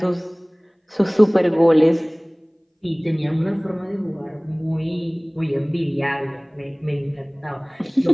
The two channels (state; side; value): identical; both; correlation 1.00